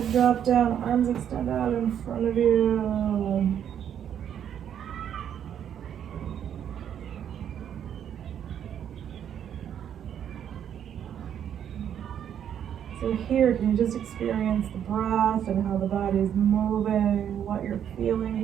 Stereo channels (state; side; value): quieter; left; 9.3 dB